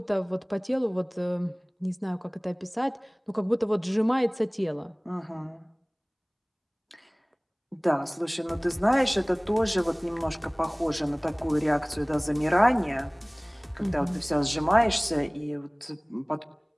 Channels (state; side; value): identical; both; correlation 1.00